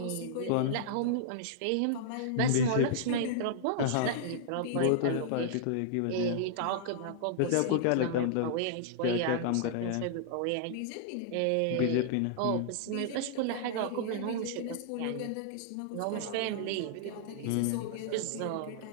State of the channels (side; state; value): both; different; correlation -0.01